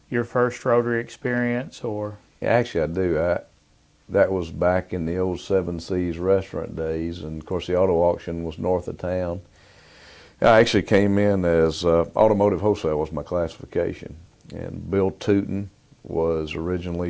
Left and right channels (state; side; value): identical; both; correlation 1.00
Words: your first Rotary experience, or? Yeah, actually, I do. That was back in the old Seven Seas restaurant days, and of course the auto auction was north of town. I actually came in as automotive wholesale was my classification, and Bill Tootin was